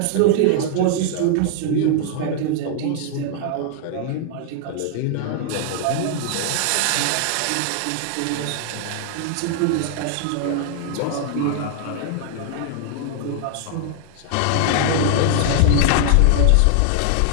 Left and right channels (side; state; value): both; different; correlation 0.00